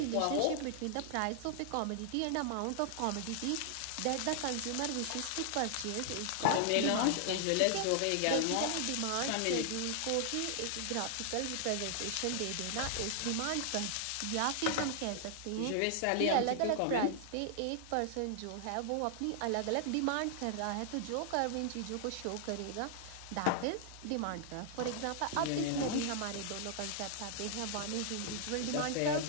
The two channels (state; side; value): different; both; correlation -0.01